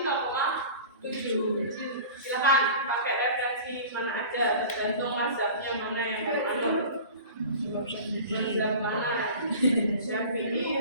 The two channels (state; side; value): inverted; both; correlation -0.39